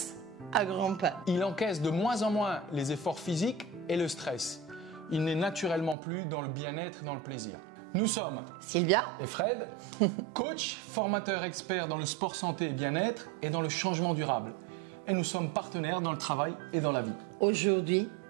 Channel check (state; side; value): drops out; left; at 6.0 s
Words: à grands pas. Il encaisse de moins en moins les efforts physiques et le stress. Il n'est naturellement plus dans le bien-être et dans le plaisir. Nous sommes Sylvia et Fred, coach, formateur expert dans le sport santé et bien-être et dans le changement durable. Et nous sommes partenaires dans le travail et dans la vie. Aujourd'hui,